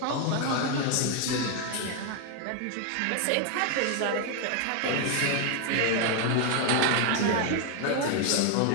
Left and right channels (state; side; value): different; both; correlation 0.01